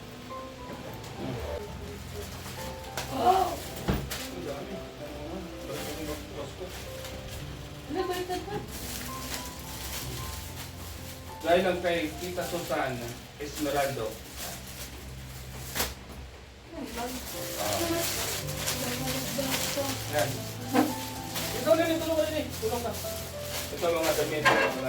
Oh! Ano ba ito ba? Dahil lang kay Tita Susan Esmeraldo. Yan. Ito na rin, tulong ka rin eh. Tulong ka. Ito mga damit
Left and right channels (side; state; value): both; identical; correlation 1.00